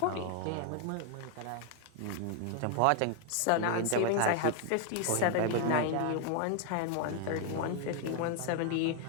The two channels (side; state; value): both; different; correlation 0.01